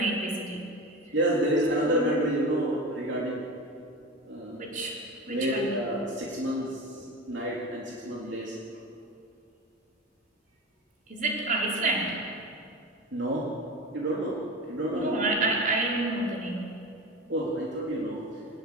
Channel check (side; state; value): both; normal; correlation 0.28